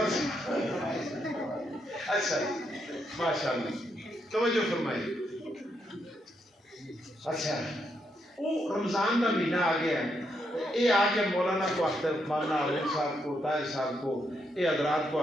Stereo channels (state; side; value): normal; both; correlation 0.79